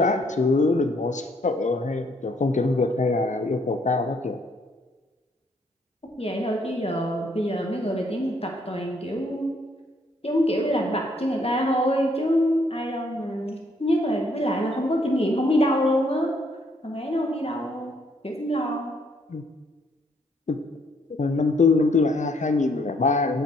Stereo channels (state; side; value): normal; both; correlation 0.68